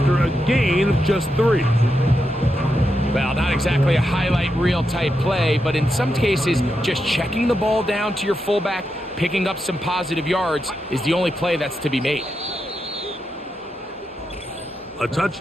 a gain of just 3. Well, not exactly a highlight reel type play, but in some cases, just checking the ball down to your fullback, picking up some positive yards is the only play that's to be made. A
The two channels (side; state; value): both; normal; correlation 0.85